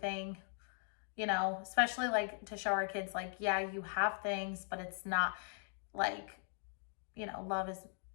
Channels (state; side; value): silent; right; 51 dB below the other